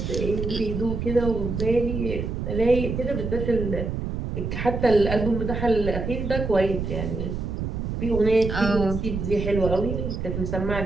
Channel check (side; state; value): right; noise; rumble, 3 dB below the sound